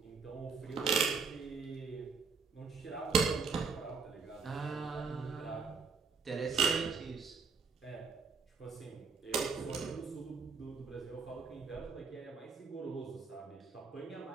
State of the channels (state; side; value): quieter; left; 5.0 dB